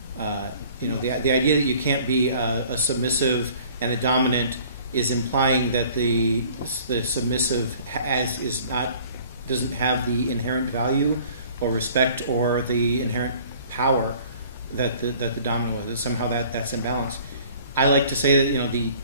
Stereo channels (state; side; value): inverted; both; correlation -0.52